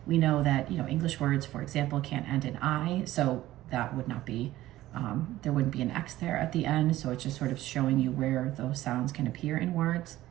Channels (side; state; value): left; quieter; 15.4 dB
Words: We know that, you know, English words, for example, can't end in I, so that would not be, there wouldn't be an X there at the end, so it's just sort of showing you where those sounds can appear in words.